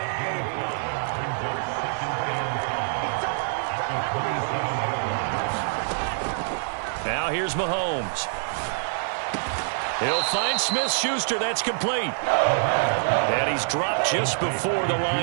Now here's Mahomes. He'll find Smith-Schuster. That's complete. And he's dropped just before the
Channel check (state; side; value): silent; left; digital silence